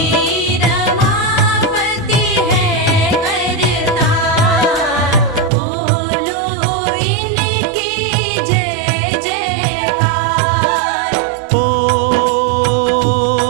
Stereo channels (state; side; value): drops out; left; at 5.5 s